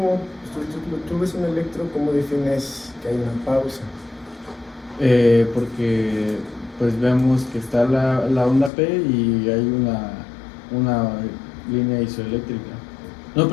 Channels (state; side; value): drops out; right; at 8.7 s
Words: tú ves un electro, cómo defines que hay una pausa? porque pues vemos que está la onda P y hay una línea isoeléctrica. No,